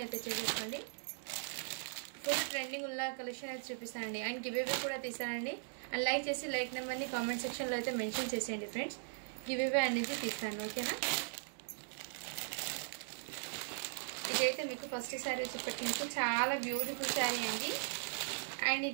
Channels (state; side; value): silent; left; digital silence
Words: అయితే చేసేసుకోండి. ఫుల్ ట్రెండింగ్ ఉన్న కలెక్షన్ అయితే చూపిస్తానండి. అండ్ గివ్ అవే కూడా తీస్తానండి. అండ్ లైక్ చేసి లైక్ నెంబర్ని కామెంట్ సెక్షన్లో అయితే మెన్షన్ చేసేయండి ఫ్రెండ్స్. గివ్ అవే అనేది తీస్తాను, ఓకేనా. ఇదైతే మీకు ఫస్ట్ శారీ వచ్చేప్పటికి మీకు చాలా బ్యూటిఫుల్ శారీ అండి. అండ్